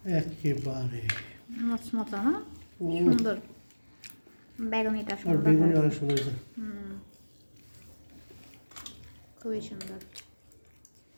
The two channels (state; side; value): inverted; both; correlation -1.00